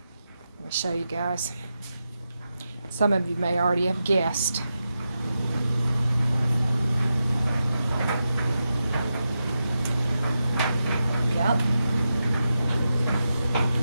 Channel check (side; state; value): both; inverted; correlation -0.89